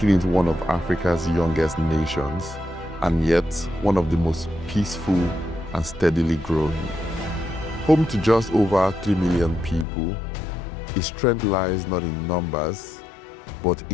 it one of Africa's youngest nations, and yet one of the most peaceful and steadily growing. Home to just over 3 million people, its strength lies not in numbers, but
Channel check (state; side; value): drops out; right; at 9.9 s